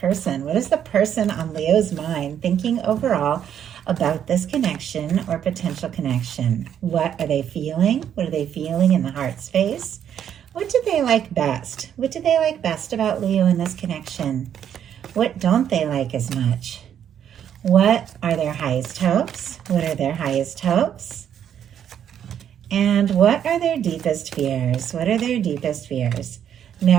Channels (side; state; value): left; quieter; 9.3 dB